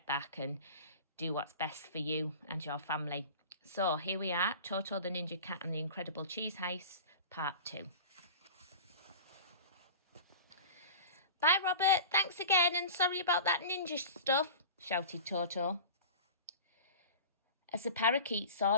back and do what's best for you and your family. So here we are, Toto the Ninja Cat and the Incredible Cheese Heist, part 2. Bye, Robert. Thanks again, and sorry about that ninja stuff, shouted Toto, as the parakeet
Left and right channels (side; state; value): both; inverted; correlation -0.37